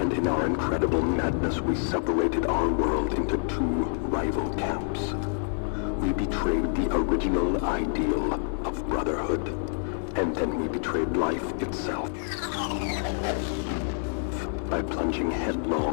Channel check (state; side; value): silent; right; digital silence